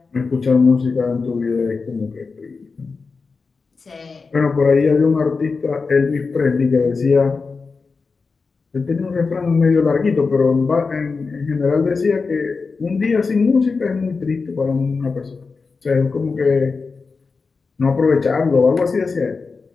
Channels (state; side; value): quieter; right; 4.5 dB